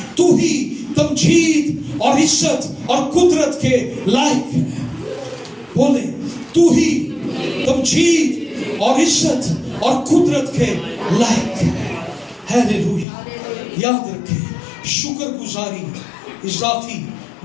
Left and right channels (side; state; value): right; drops out; at 13.1 s